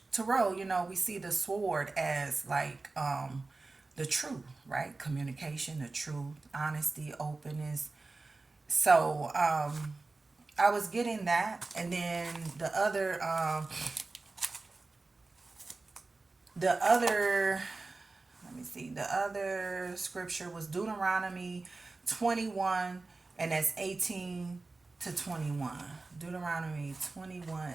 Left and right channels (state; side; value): quieter; left; 3.6 dB